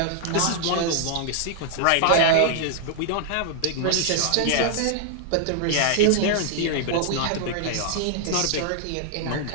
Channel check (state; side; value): different; both; correlation -0.01